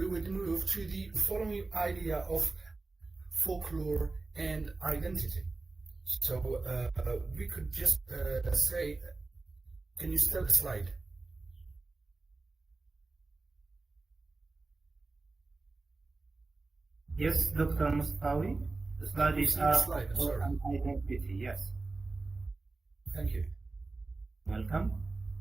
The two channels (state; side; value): quieter; left; 3.5 dB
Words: would move to the following idea of folklore and identity. So we could just say, can you start the slide? Yes, Dr. Mustawi. The slide is see the up slide, I'm for sorry. an identity. Yes. Thank you. Welcome.